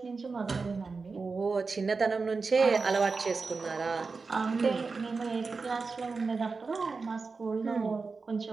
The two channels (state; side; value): quieter; left; 4.4 dB